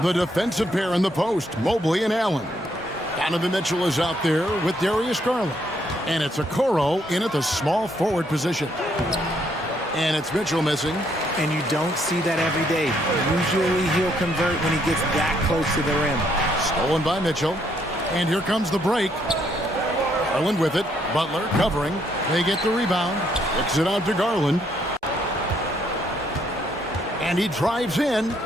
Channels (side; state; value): both; normal; correlation 0.71